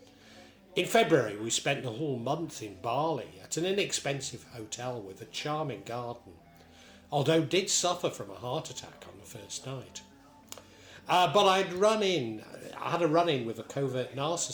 In February we spent the whole month in Bali at an inexpensive hotel with a charming garden, although did suffer from a heart attack on the first night. But I had a run-in with a covert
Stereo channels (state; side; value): identical; both; correlation 1.00